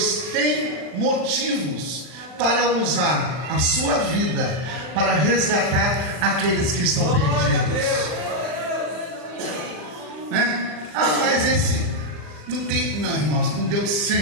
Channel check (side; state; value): left; late; 40 ms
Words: tem motivos para usar a sua vida para resgatar aqueles que estão perdidos. Né? Ah, mas esse não tem. Não, irmãos, com Deus